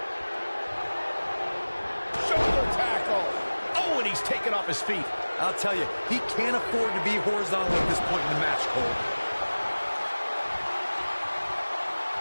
Shoulder tackle. Oh, and he's taken off his feet. I'll tell you, he can't afford to be horizontal at this point in the match, Cole.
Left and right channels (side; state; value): both; inverted; correlation -1.00